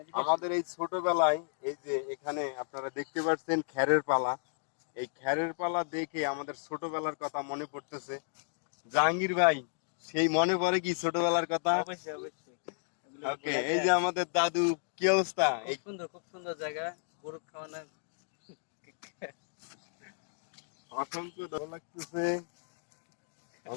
এদিকে। আমাদের এই ছোটবেলায় এই যে এখানে আপনারা দেখতে পাচ্ছেন খ্যারের পালা, এই খ্যারের পালা দেখে আমাদের ছোটবেলার কথা মনে পড়তেছে। জাহাঙ্গীর ভাই, সেই মনে পড়ে কি ছোটবেলার কথা? অবশ্যই অবশ্যই। এগুলো ওকে, বলা এই যায়। যে আমাদের দাদু, কি অবস্থা? এই খুব সুন্দর জায়গা, গরু খাওয়ানো। অসংখ্য ভালো লাগতেছে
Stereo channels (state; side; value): silent; right; digital silence